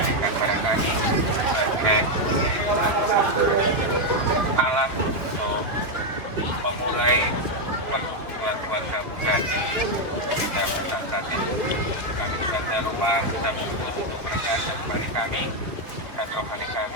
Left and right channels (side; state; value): left; late; 2.9 ms